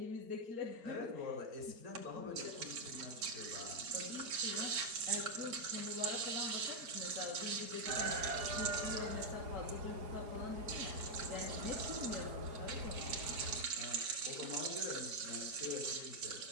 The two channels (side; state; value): left; late; 4.4 ms